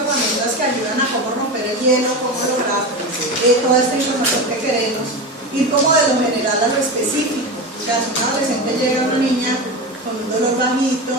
herramientas que ayudan a cómo romper el hielo, cómo lograr toda esta información que queremos, ir como de lo general a lo específico. O sea, si un adolescente llega a una niña con un dolor bajito,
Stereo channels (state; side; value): normal; both; correlation 0.22